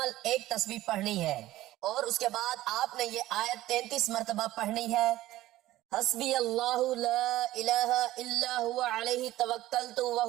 ایک تسبیح پڑھنی ہے، اور اس کے بعد آپ نے یہ آیت 33 مرتبہ پڑھنی ہے۔ حسبی اللہ لا الہ الا ہوا علیہ توکلت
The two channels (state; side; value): quieter; left; 15.7 dB